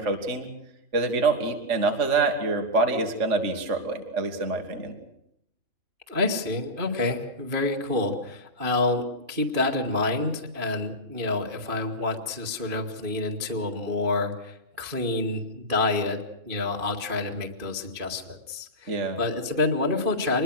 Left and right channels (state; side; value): late; left; 2.5 ms